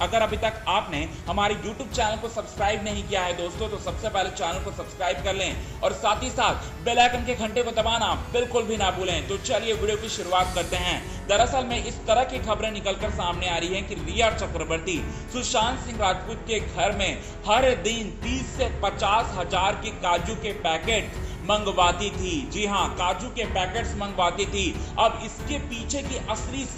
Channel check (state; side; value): identical; both; correlation 1.00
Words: अभी तक आपने हमारे यूट्यूब चैनल को सब्सक्राइब नहीं किया है दोस्तों, तो सबसे पहले चैनल को सब्सक्राइब कर लें और साथ ही साथ बेल आइकन के घंटे को दबाना बिल्कुल भी ना भूलें। तो चलिए वीडियो की शुरुआत करते हैं। दरअसल में इस तरह की खबरें निकलकर सामने आ रही हैं कि रिया चक्रवर्ती सुशांत सिंह राजपूत के घर में हर दिन 30 से 50 हजार के काजू के पैकेट मंगवाती थी। जी हां, काजू के पैकेट्स मंगवाती थी। अब इसके पीछे की असली